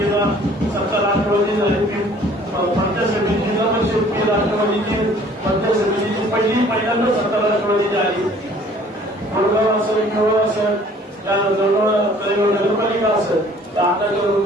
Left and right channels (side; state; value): both; normal; correlation 0.54